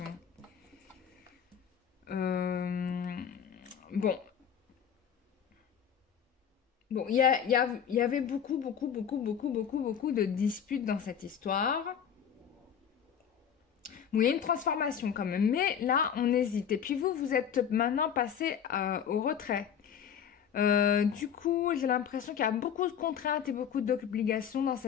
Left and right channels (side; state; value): right; quieter; 8.2 dB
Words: Bon. Bon, il y avait beaucoup de disputes dans cette histoire. Bon, il y a une transformation quand même. Mais là, on hésite. Et puis vous, vous êtes maintenant passé au retrait. Du coup, j'ai l'impression qu'il y a beaucoup de contraintes et beaucoup d'obligations dans